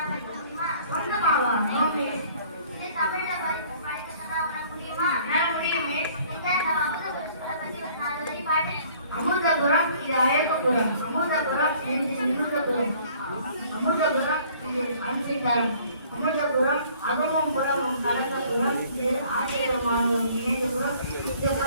படிக்க முடியுமா? சொந்தமாவா? இது தமிழ்ல படிக்க சொன்னா உனக்கு முடியுமா? முடியுமே. நம்ம அமுதபுரத்தை பத்தி ஒரு 4 வரி பாடு. அமுதபுரம் இது அழகபுரம். அமுதபுரம் இது நிமிதபுரம். அமுதபுரம் இது அன்சிதாரம். அமுதபுரம் அகமும் புறமும் கலந்த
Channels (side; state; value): both; inverted; correlation -0.56